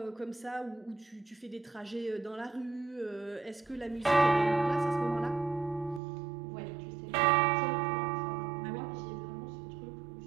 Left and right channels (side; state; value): left; drops out; at 6.0 s